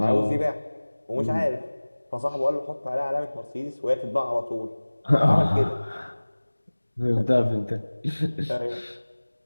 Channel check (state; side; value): inverted; both; correlation -1.00